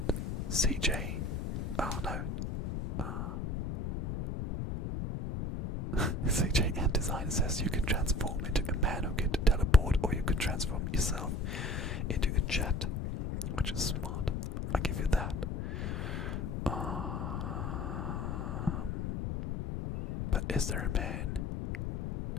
CJ, oh no, CJ and Design says you could transform into a man who could teleport, or you could transform yourself into a jet, which is smart. I give you that. But is there a man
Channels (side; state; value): left; noise; rumble, 2 dB below the sound